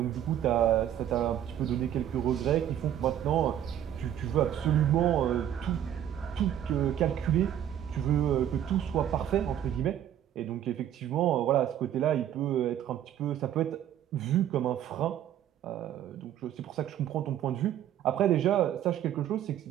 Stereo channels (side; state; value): left; quieter; 10.8 dB